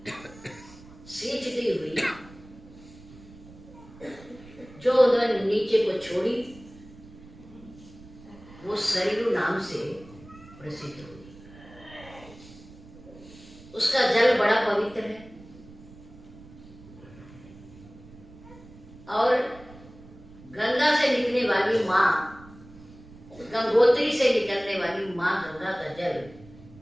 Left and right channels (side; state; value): right; noise; rumble, 20 dB below the sound